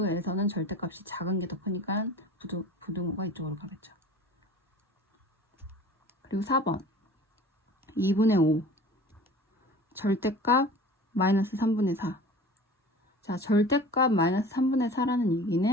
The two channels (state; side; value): normal; both; correlation 0.42